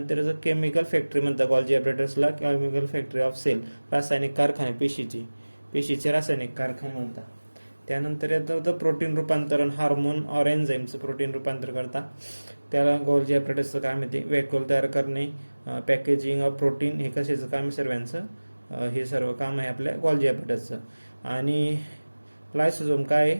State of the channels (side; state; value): both; inverted; correlation -1.00